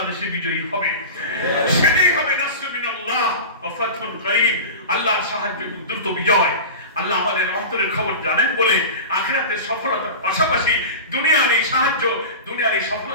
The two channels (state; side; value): inverted; both; correlation -0.30